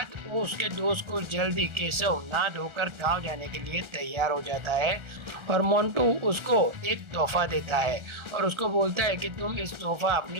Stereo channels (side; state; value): left; late; 1.4 ms